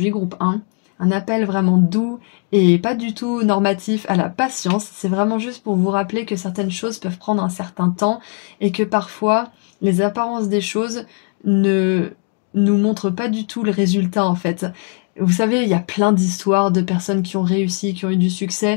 groupe 1. Un appel vraiment doux et pas du tout normatif à la patience. C'est vraiment juste pour vous rappeler que certaines choses peuvent prendre un certain temps et que parfois, les apparences des choses ne nous montrent pas du tout le résultat en fait. Vous savez, il y a plein d'histoires de personnes qui ont réussi, qui ont eu du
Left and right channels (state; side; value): quieter; right; 36.8 dB